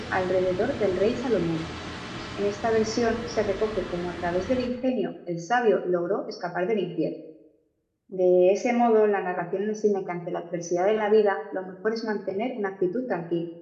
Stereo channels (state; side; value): identical; both; correlation 1.00